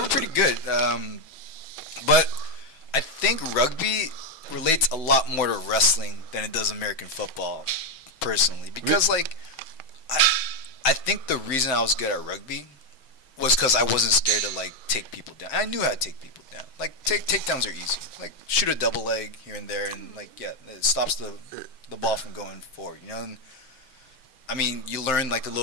pretty good. But I think rugby relates a lot more to wrestling than it does American football, personally, because, like, I think the reason I was good at rugby was because I wasn't scared to, like, take people down. I knew how to take people down. Like, takedowns are easy. Like, shoot a double leg here and there, and, like, yeah, it stops the ball from going forward, And I mean, you learn, like, the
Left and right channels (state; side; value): late; right; 6.2 ms